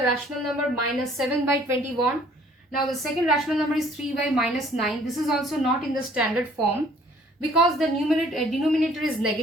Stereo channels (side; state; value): both; normal; correlation 0.57